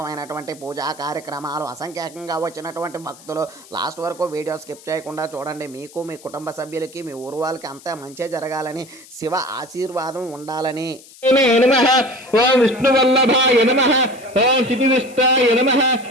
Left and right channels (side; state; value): left; noise; hiss, 22 dB below the sound